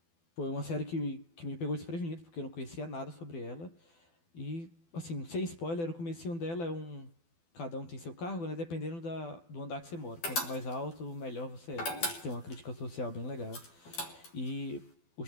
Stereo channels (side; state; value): right; late; 12 ms